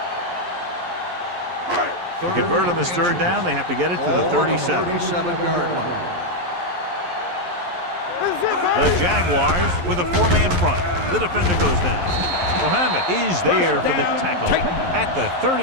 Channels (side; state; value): left; late; 11 ms